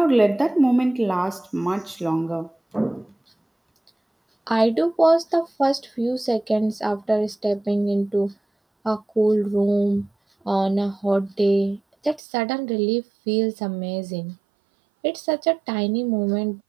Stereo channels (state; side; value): drops out; left; at 12.2 s